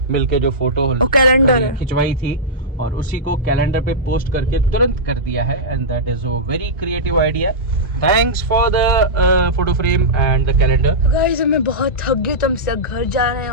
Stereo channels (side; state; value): both; normal; correlation -0.12